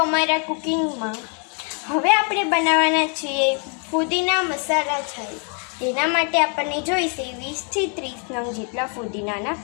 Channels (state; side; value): quieter; right; 40.0 dB